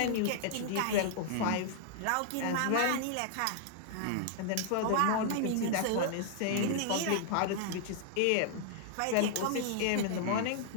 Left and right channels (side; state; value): both; different; correlation -0.01